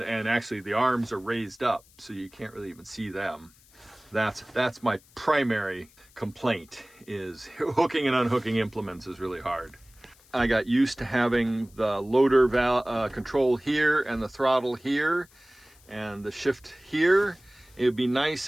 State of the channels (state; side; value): noise; left; hiss, 28 dB below the sound